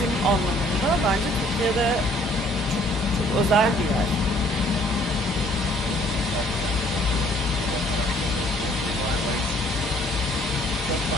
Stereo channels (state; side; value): normal; both; correlation 0.60